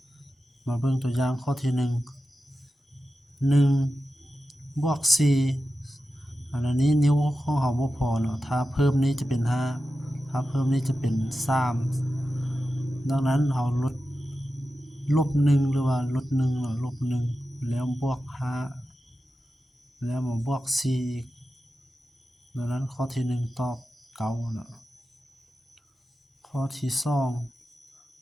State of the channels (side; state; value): both; normal; correlation 0.92